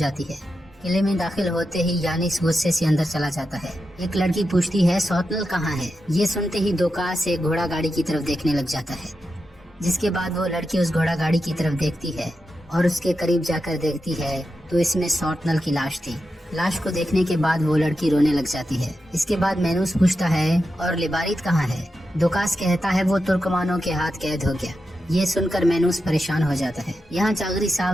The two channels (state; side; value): normal; both; correlation 0.89